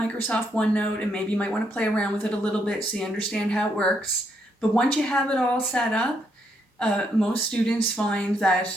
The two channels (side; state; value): both; normal; correlation 0.76